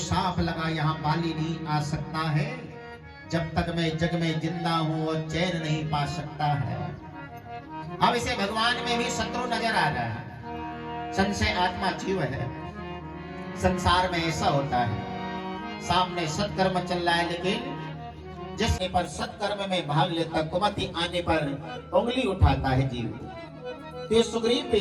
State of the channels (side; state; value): both; identical; correlation 1.00